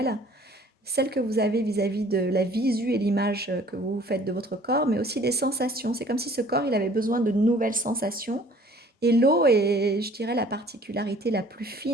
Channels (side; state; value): both; normal; correlation 0.53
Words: celle que vous avez vis-à-vis de la visu et l'image que vous faites de votre corps, mais aussi des sensations. C'est comme si ce corps, il avait besoin de nouvelles sensations. Et l'eau est, je dirais, la particularité la plus